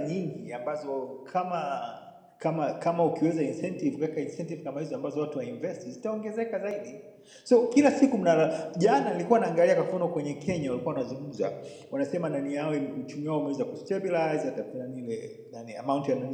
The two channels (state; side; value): identical; both; correlation 1.00